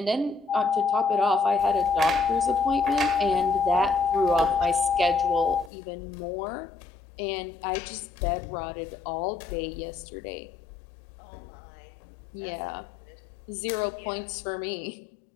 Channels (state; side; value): drops out; right; at 5.7 s